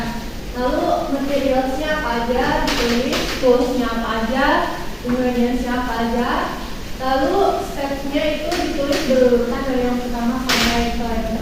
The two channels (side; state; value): both; identical; correlation 1.00